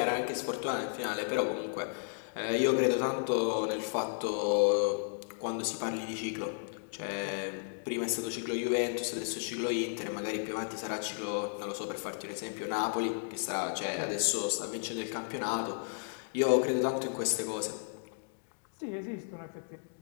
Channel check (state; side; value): silent; right; digital silence